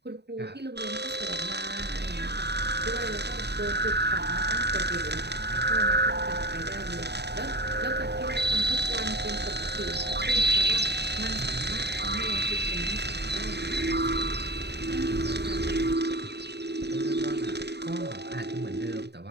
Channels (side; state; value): left; late; 0.49 ms